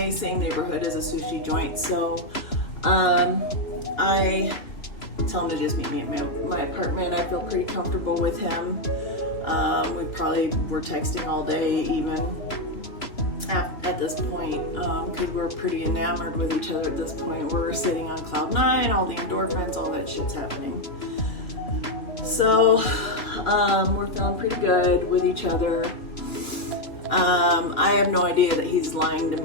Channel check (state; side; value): late; right; 2.9 ms